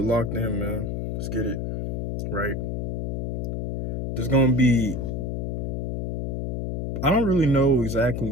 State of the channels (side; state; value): left; noise; hum, 2 dB below the sound